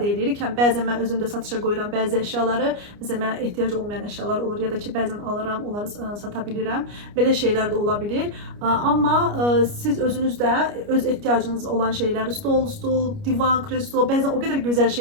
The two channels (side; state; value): left; late; 29 ms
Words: edirik. Həm bəzən mən özüm də satışa qoyuram bəzi əşyaları, məsələn, mənə ehtiyac olmayan əşyalar olur ya da ki, bəzən alıram, onları sata bilirəm. Belə şeylər də ola bilir. Amma siz özünüz də öz ehtiyacınız olan şeyləri, stol, divan, kreslo, bəzən o qədər gözəl